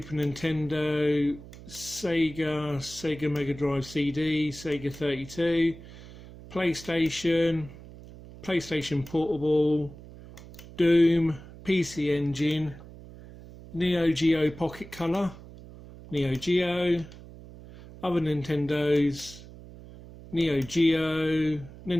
Nintendo, Sega Mega Drive CD, Sega 32, PlayStation Portable, Doom, PC Engine, Neo Geo Pocket Color, Neo Geo, other Nintendos, Neo Geo,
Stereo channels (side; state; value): right; noise; hum, 17 dB below the sound